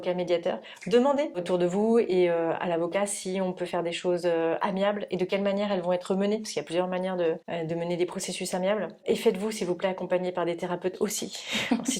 médiateurs. Demandez autour de vous et à l'avocat si on peut faire des choses amiables et de quelle manière elles vont être menées, parce qu'il y a plusieurs manières de mener des processus amiables. Et faites-vous, s'il vous plaît, accompagner par des thérapeutes aussi. En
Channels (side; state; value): both; identical; correlation 1.00